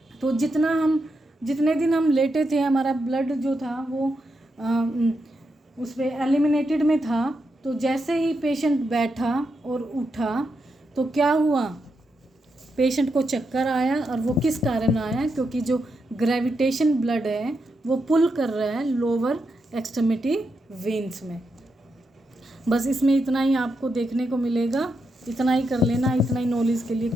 तो जितने दिन हम लेटे थे हमारा ब्लड जो था वो उस पर एलिमिनेटेड में था। तो जैसे ही पेशेंट बैठा और उठा तो क्या हुआ, पेशेंट को चक्कर आया। और वो किस कारण आया, क्योंकि जो ग्रेविटेशन ब्लड है वो पुल कर रहा है लोअर एक्सट्रीमिटी वेन्स में। बस इसमें इतना ही आपको देखने को मिलेगा, इतना ही कर लेना, इतना ही नॉलेज के लिए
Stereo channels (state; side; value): normal; both; correlation 0.84